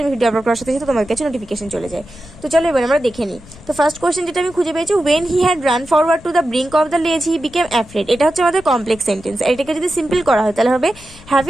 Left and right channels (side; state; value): left; noise; rumble, 21 dB below the sound